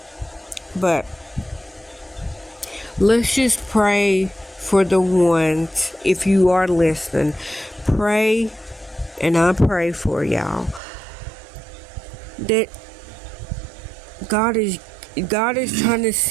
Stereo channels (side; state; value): left; drops out; at 10.8 s